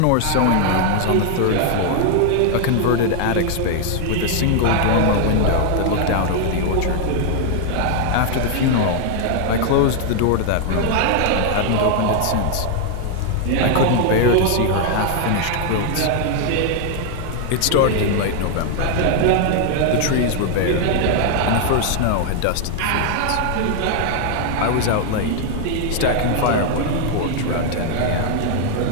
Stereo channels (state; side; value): different; both; correlation 0.00